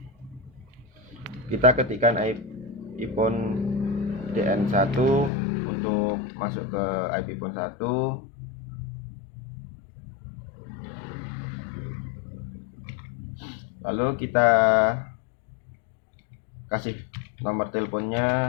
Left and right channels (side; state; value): right; drops out; at 5.3 s